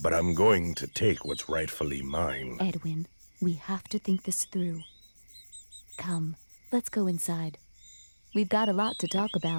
I'm going to take what's rightfully mine. Edwin, we have to think this through. Come, let's go inside. We've got a lot to talk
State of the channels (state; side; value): inverted; both; correlation -1.00